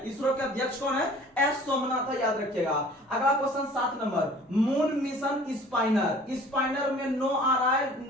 इसरो के अध्यक्ष कौन है? एस सोमनाथ है, याद रखिएगा। अगला क्वेश्चन 7 नंबर, मून मिशन स्पाइनर। स्पाइनर में नो आ रहा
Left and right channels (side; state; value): both; normal; correlation 0.48